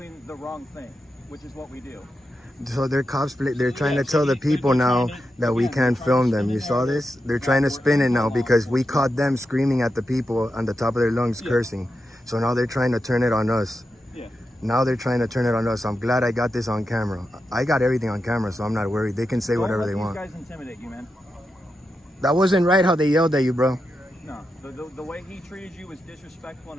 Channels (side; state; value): both; normal; correlation 0.88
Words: the wrong thing, which is what we do. So they're they're trying to tell the people now that we can't film them. You saw this? They're trying to spin it now because we caught them screaming at the people on the top of their lungs, cursing. So now they're trying to turn it on us. Yeah. Now they're trying to turn it on us. I'm glad I got this on camera. I got everything on camera, so I'm not worried. They can say whatever they want. Don't let these guys intimidate you, man. That wasn't right how they yelled at you, bro. No, the way he treated you was disrespectful